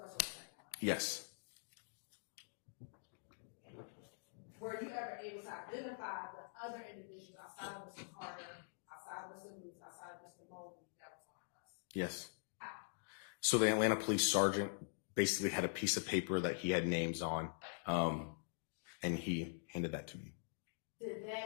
or the second bus? Yes. Were you ever able to identify the other individuals outside of Mr. Carter, outside of Mr. Lewis, outside of Mr. Mobley that was on the bus? Yes. How? So the Atlanta police sergeant basically had a piece of paper that he had names on, and he handed that to me. Did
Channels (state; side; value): silent; right; digital silence